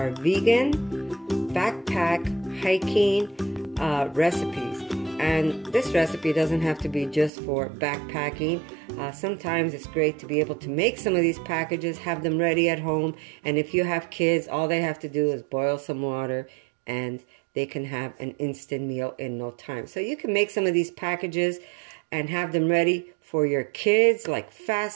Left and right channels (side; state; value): left; drops out; at 7.3 s